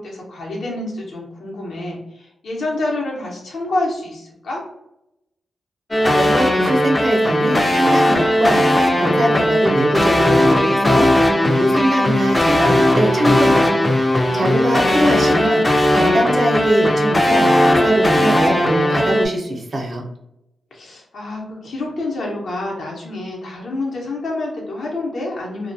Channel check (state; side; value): normal; both; correlation 0.92